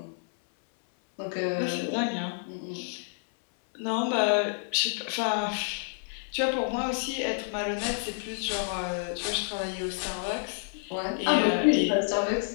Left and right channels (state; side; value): silent; right; 59 dB below the other